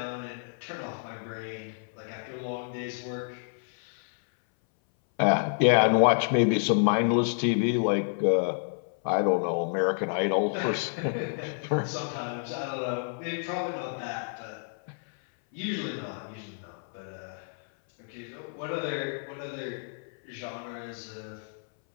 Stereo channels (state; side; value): silent; right; 58 dB below the other